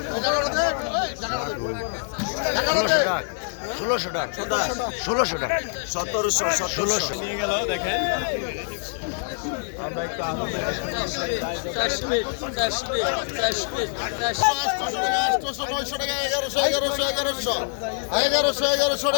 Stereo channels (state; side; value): silent; right; 62 dB below the other